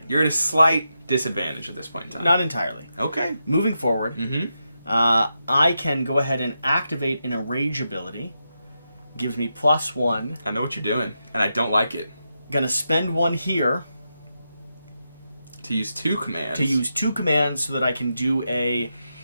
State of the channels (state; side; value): inverted; both; correlation -0.87